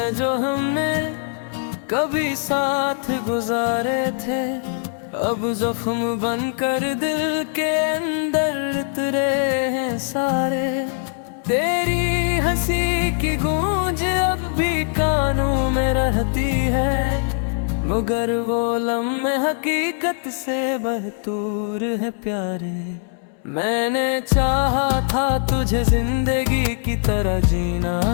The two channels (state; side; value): silent; right; 65 dB below the other